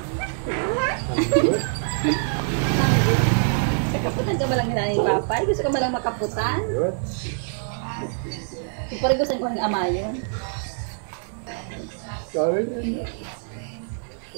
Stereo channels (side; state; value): left; silent; 62 dB below the other